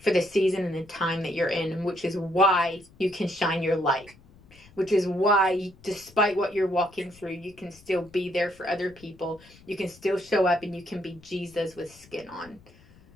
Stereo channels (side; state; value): left; noise; rumble, 25 dB below the sound